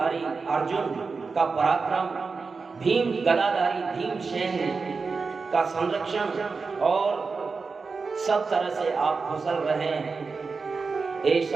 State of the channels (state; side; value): quieter; left; 4.6 dB